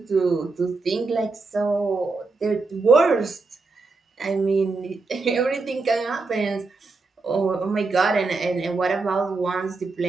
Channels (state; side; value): quieter; left; 3.8 dB